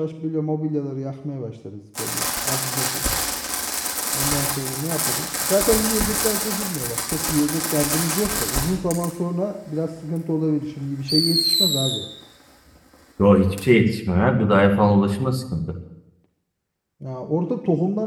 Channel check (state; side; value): identical; both; correlation 1.00